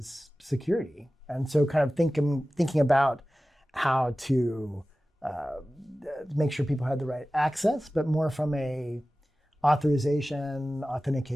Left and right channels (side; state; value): both; normal; correlation 0.96